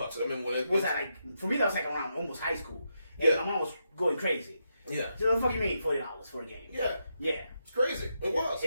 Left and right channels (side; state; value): both; inverted; correlation -0.83